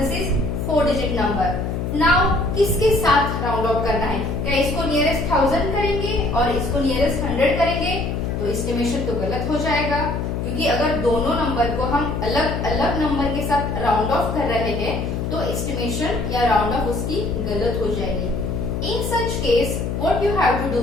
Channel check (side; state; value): left; noise; hum, 2 dB below the sound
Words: is 4-digit number. Now किसके साथ round of करना है? क्या इसको nearest 1000 करेंगे और इसको नियरेस्ट 100 करेंगे? तो एस्टिमेशन तो गलत हो जाएगा, क्योंकि अगर दोनों नंबर को हम अलग अलग नंबर के साथ राउंड ऑफ कर रहे हैं तो एस्टिमेशन या राउंड ऑफ उसकी गलत हो जाएगी. In such case, what you have to